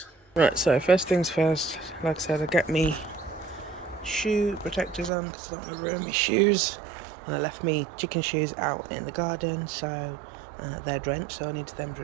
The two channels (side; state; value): left; drops out; at 5.1 s